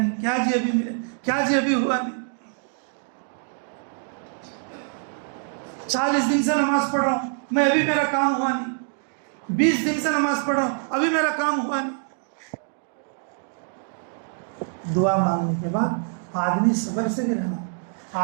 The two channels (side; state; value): left; silent; 59 dB below the other